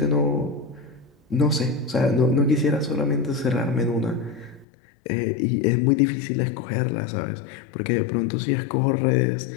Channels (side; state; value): right; drops out; at 4.7 s